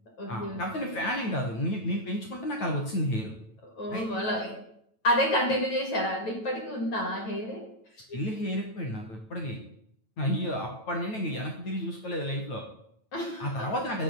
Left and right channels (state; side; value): late; right; 9.1 ms